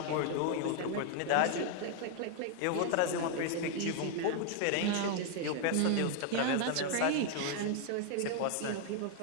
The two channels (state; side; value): different; both; correlation 0.00